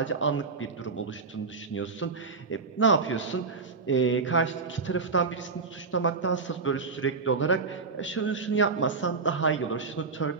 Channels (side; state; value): left; quieter; 4.5 dB